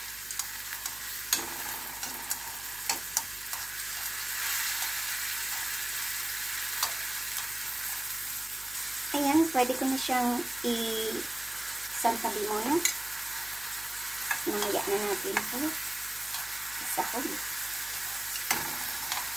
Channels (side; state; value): right; noise; hum, 21 dB below the sound